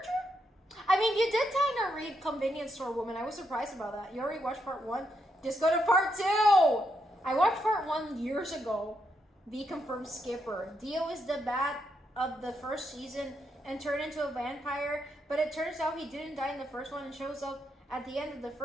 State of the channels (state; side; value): normal; both; correlation 0.79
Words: I mean, you did kind of read Convenience Store Woman. I was surprised about that. You already watched part 1? Just go to part 2! I watched part 1 years ago. B confirmed Skipper. Dio is the bat of the first season and turned into a vampire, but it turns out he didn't die in the first one and shows up at the end of the